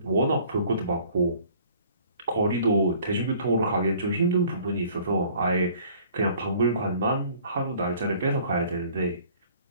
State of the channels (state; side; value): inverted; both; correlation -0.54